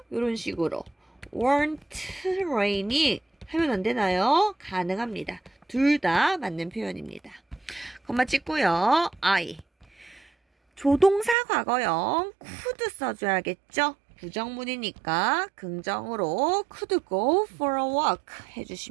이런 식으로 weren't rainy 하면 안 되나요? 가능합니다. 둘 다 맞는 표현입니다. 콤마 찍고요. I 조동사 과거형 could 써줘야겠죠? 부정문이니까 긍정으로 could go for a walk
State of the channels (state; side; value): drops out; left; at 11.4 s